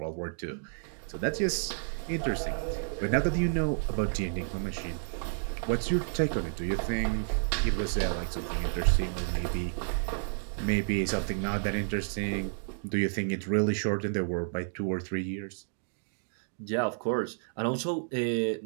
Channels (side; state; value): left; silent; digital silence